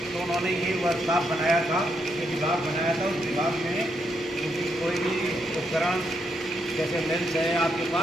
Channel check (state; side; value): normal; both; correlation 0.79